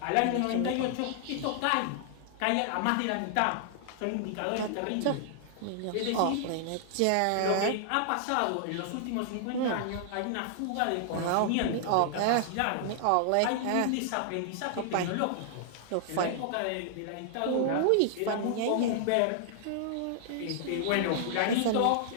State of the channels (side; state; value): both; different; correlation -0.01